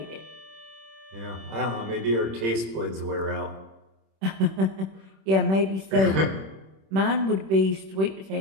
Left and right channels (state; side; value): late; left; 26 ms